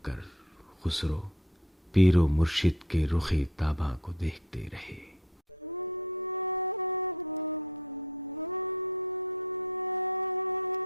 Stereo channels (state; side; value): normal; both; correlation 0.45